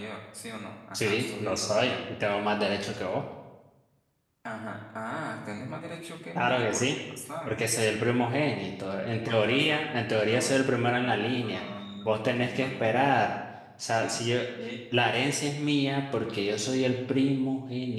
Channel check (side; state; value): both; identical; correlation 1.00